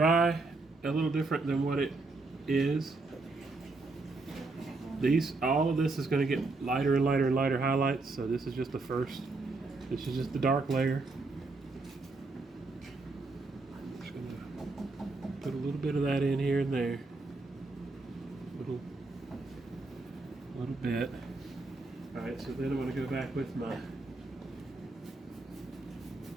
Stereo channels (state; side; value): quieter; left; 3.4 dB